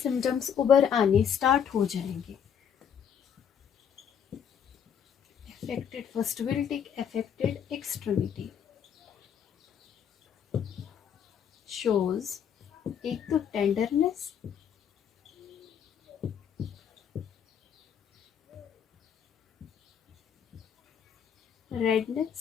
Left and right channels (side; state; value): right; quieter; 8.1 dB